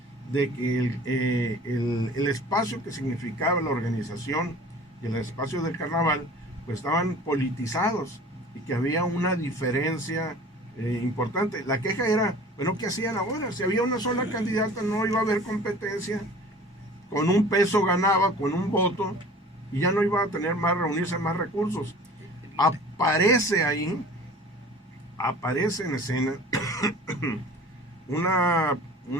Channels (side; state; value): both; normal; correlation 0.44